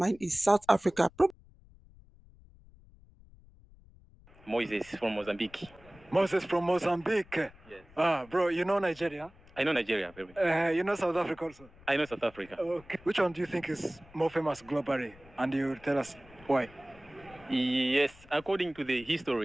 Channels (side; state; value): left; noise; rumble, 24 dB below the sound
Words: is South Africa. Moses from Mozambique. Moses from Mozambique. Yes. Bro, you know Nigeria? I know Nigeria very well. You know South Africa also? I know South Africa. Okay. Which one do you think is more famous globally? And you tell us why? Yes, according to the